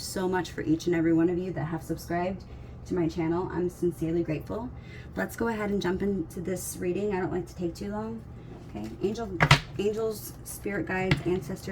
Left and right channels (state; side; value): identical; both; correlation 1.00